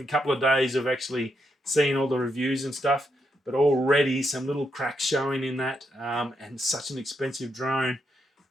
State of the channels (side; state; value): both; normal; correlation 0.80